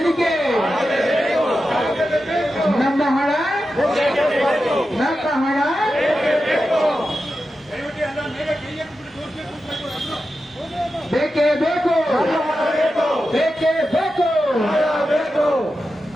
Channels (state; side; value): normal; both; correlation 0.91